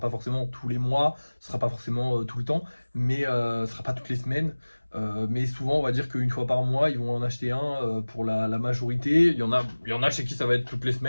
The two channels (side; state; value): both; inverted; correlation -1.00